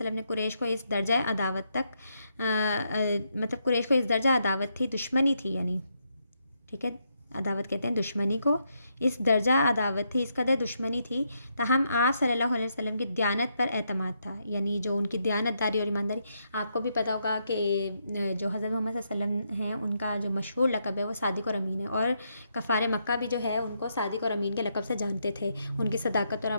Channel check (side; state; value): both; inverted; correlation -0.79